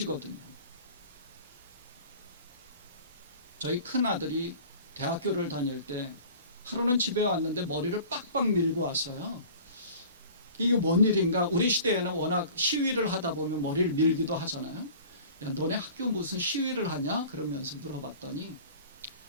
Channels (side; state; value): both; inverted; correlation -0.44